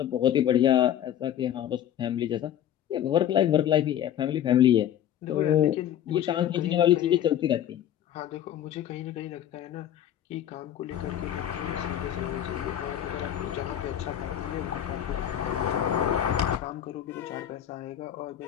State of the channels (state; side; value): quieter; right; 10.8 dB